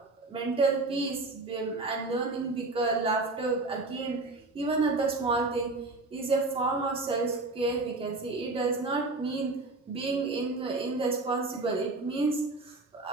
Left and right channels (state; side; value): quieter; left; 3.3 dB